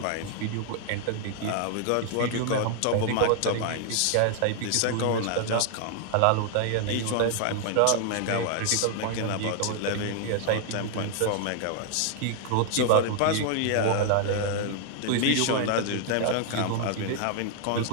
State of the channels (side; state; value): both; different; correlation 0.00